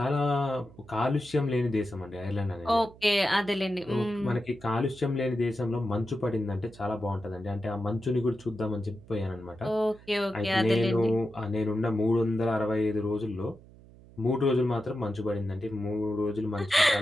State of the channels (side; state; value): right; noise; hum, 22 dB below the sound